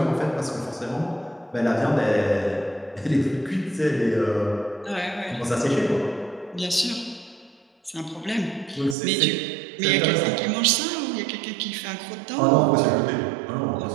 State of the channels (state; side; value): drops out; left; at 9.0 s